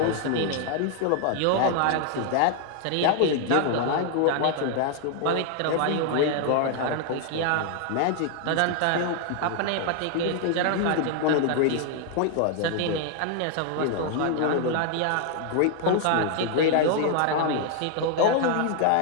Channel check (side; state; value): both; different; correlation 0.00